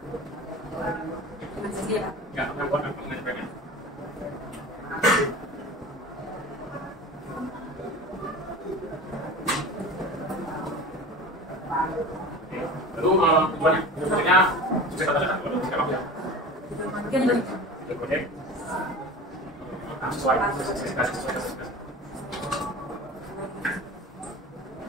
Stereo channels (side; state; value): both; normal; correlation 0.35